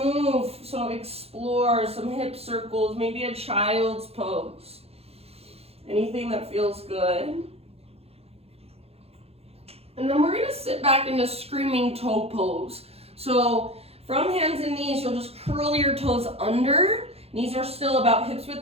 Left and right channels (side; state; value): left; late; 0.29 ms